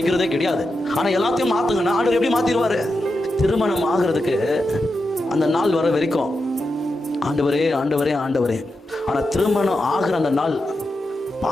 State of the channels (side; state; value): both; normal; correlation 0.88